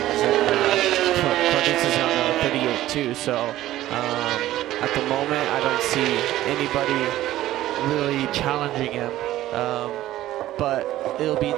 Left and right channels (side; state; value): left; quieter; 14.5 dB